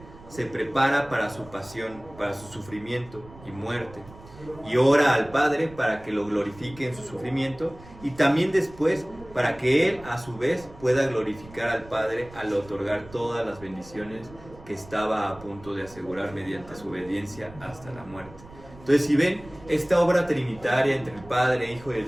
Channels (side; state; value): right; noise; rumble, 20 dB below the sound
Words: se prepara para su pasión, para su sufrimiento y muerte. Y ora al Padre para que lo glorifique en su sufrimiento, y también después para que Él a su vez pueda glorificar al Padre al otorgar todas las bendiciones que estaba a punto de asegurar mediante su obediencia hasta la muerte. Entonces, si ven, esta obra trinitaria entre el Padre, Hijo y el